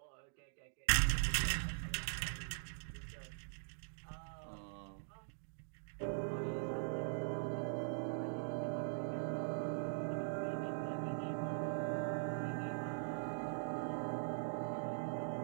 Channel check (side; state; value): left; silent; digital silence